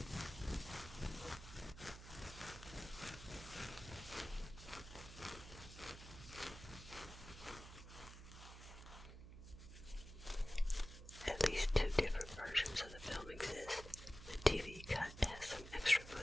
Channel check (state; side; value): noise; right; hum, 13 dB below the sound